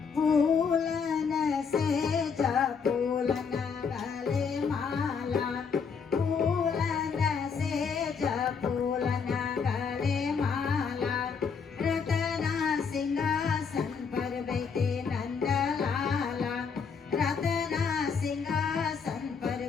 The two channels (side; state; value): right; quieter; 5.9 dB